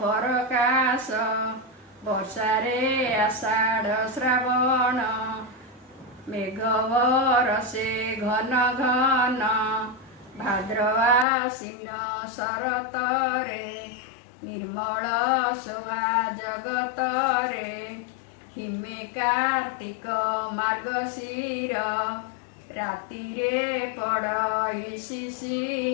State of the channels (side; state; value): right; drops out; at 11.2 s